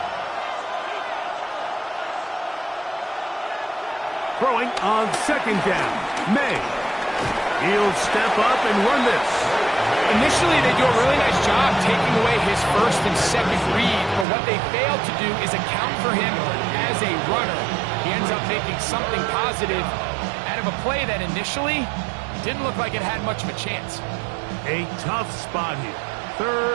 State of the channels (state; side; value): drops out; left; at 14.2 s